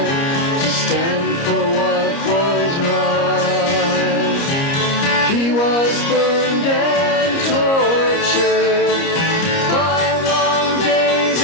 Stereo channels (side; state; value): right; late; 30 ms